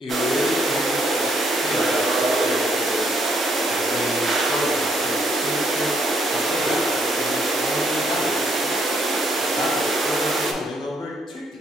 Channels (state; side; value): normal; both; correlation 0.71